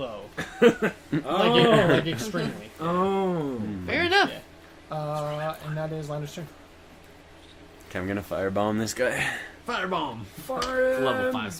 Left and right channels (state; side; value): identical; both; correlation 1.00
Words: like extremely. Oh. Fair enough. Yeah. And that is Lander's turn. Okay, I'm gonna firebomb this guy. Firebomb! Fire. Level 5